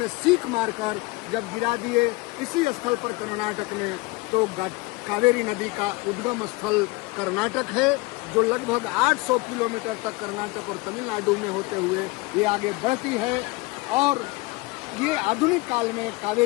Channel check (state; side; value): quieter; right; 23.5 dB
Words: सीख मारकर जब गिरा दिए इसी स्थल पर कर्नाटक में, तो कावेरी नदी का उद्गम स्थल कर्नाटक है, जो लगभग 800 किलोमीटर तक कर्नाटक और तमिलनाडु में होते हुए ये आगे बढ़ती है। और ये आधुनिक काल में